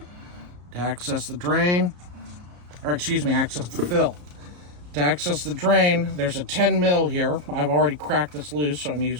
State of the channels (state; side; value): late; left; 34 ms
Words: To access the drain, access the fill. To access the drain, there's a 10 mil here. I've already cracked this loose, so I'm